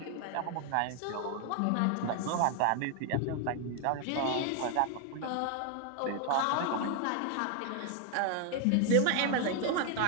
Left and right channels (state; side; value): different; both; correlation 0.01